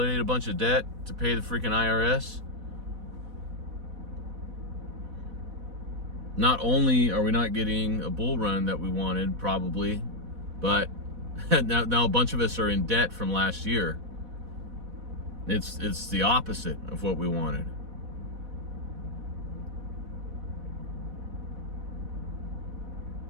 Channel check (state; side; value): late; left; 4.1 ms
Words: a bunch of debt to pay the freaking IRS. Not only are we not getting a bull run that we wanted, probably, but now a bunch of us are in debt from last year. It's the opposite of what we wanted.